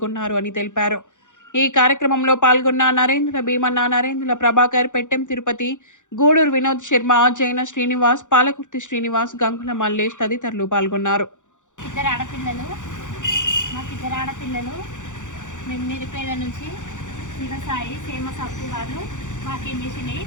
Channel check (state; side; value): late; right; 0.86 ms